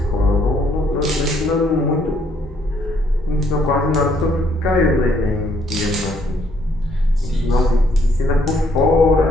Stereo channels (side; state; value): both; normal; correlation 0.68